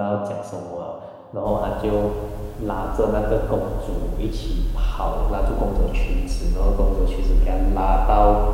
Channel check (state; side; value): identical; both; correlation 1.00